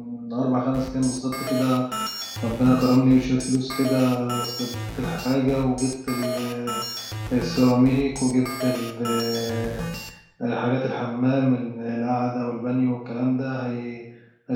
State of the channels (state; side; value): identical; both; correlation 1.00